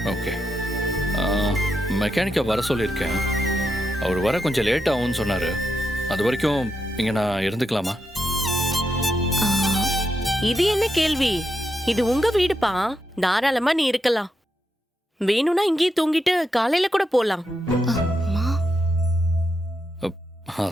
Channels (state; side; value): normal; both; correlation 0.84